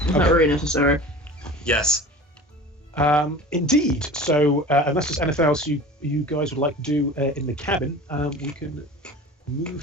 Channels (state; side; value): normal; both; correlation 0.37